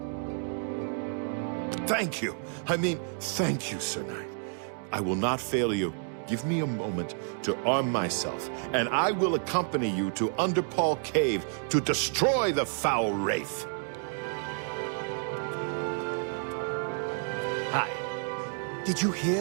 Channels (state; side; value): silent; left; 58 dB below the other